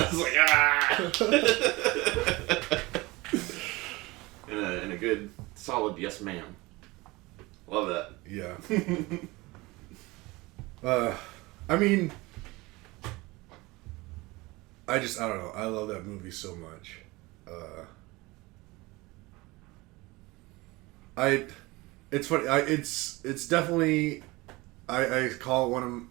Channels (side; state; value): left; quieter; 22.2 dB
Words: like, ah. in a good, solid yes, ma'am. Love that. Yeah. I mean, I don't know. I love that movie so much. It's funny. It's definitely, I call it one